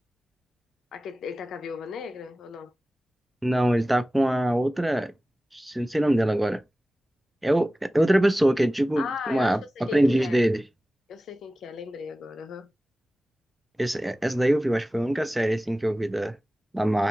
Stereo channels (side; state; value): both; normal; correlation 0.97